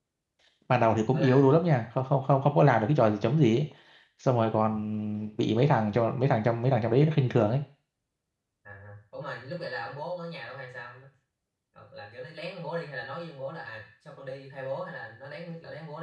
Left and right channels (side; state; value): both; identical; correlation 1.00